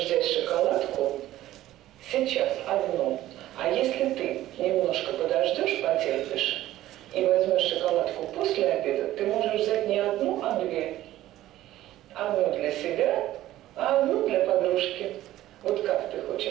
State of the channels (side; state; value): left; quieter; 14.5 dB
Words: взять шоколадку сейчас одну. А если ты немножко подождешь, потерпишь, и возьмешь шоколадку после обеда, ты можешь взять не одну, а 2. Одну для себя, а одну для подружки. Вот как ты